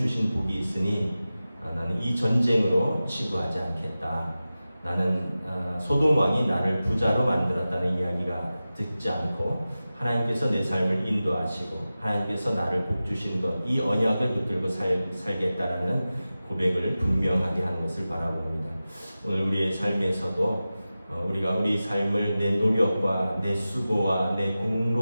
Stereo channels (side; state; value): both; inverted; correlation -0.95